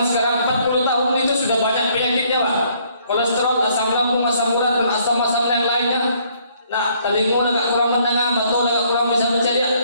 sekarang 40 tahun itu sudah banyak penyakitnya, Pak. Kolesterol, asam lambung, asam urat, dan asam-asam yang lainnya. Nah, telinga agak kurang mendengar, atau agak kurang bisa berceria.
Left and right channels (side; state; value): both; inverted; correlation -0.65